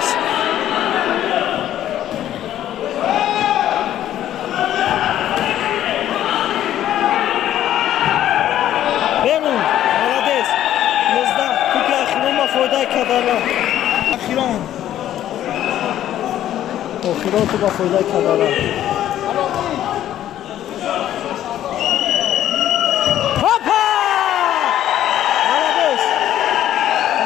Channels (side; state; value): right; quieter; 12.0 dB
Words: بینون مالدیس 11 کوپی اخیران با فایده کدرا. اخیران تو با فایده کدرا.